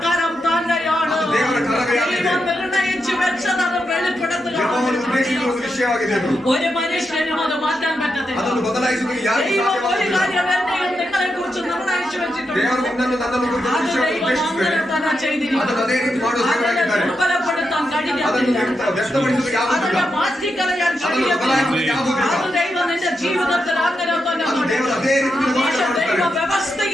കരം തന്നെയാണ്. ಅದು ದೇವರ ಕರವೇ ദൈവം നിർണയിച്ചു വെച്ചത് അത് വെളിപ്പെടുത്തുക. ಯೆಹೋವನು ಉದ್ದೇಶಿಸುವ ಒಂದು ವಿಷಯವಾಗಿದೆ ಅದು. ഒരു മനുഷ്യനും അത് മാറ്റാൻ പറ്റത്തില്ല. ಅದನ್ನು ಬದಲಾಯಿಸುವುದಕ್ಕೆ ಯಾರಿಗೂ ദൈവം ഒരു ಸಾಧ್ಯವಾಗುವುದಿಲ್ಲ. കാര്യം എന്നെയും നിങ്ങളെ കുറിച്ച് നിർണയിച്ചു വെച്ചിട്ടുണ്ട്. ದೇವರು ನಿನ್ನನ್ನು ನನ್ನನ್ನು ಕುರಿತು അത് ವಿಷಯವನ್ನು ദൈവം ಉದ್ದೇಶಿಸಿದ್ದಾರೆ. അങ്ങനെ തന്നെ ചെയ്തിരിക്കുന്നു. ಅದನ್ನು ಅದೇ ರೀತಿ ಮಾಡುವ അതിനെ ದೇವರಾಗಿದ್ದಾರೆ. ദുർബലപ്പെടുത്താൻ ಅದನ್ನು കഴിയത്തില്ല. ವ್ಯಕ್ತಪಡಿಸುವುದಕ್ಕೆ ಆಗುವುದಿಲ್ಲ. അതിനെ മാറ്റിക്കളയാൻ ಅದನ್ನು കഴിയത്തില്ല. ಬದಲಾಯಿಸುವುದಕ್ಕೆ ಆಗುವುದಿಲ್ಲ. അത് ദൈവം നിന്റെ ജീവിതത്തിൽ അങ്ങനെ തന്നെ ಅದು ದೇವರು ಅದೇ ರೀತಿ പക്ഷേ ಮಾಡುತ್ತಾರೆ. ദൈവ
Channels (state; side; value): normal; both; correlation 0.85